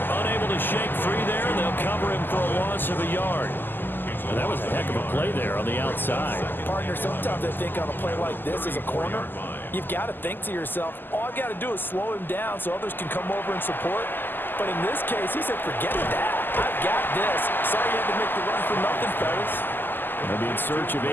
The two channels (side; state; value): right; late; 0.092 ms